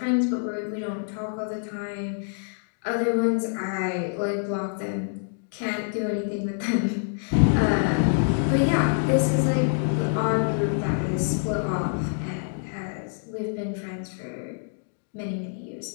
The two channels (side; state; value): right; silent; digital silence